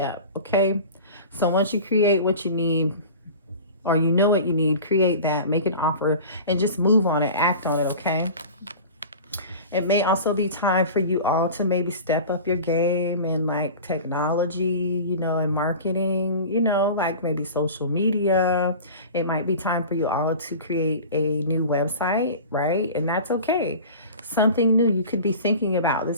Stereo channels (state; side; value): inverted; both; correlation -0.37